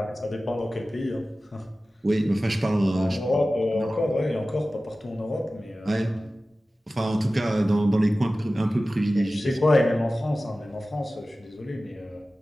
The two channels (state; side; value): normal; both; correlation 0.96